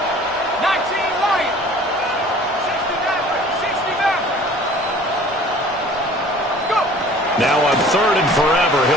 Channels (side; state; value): both; normal; correlation 0.48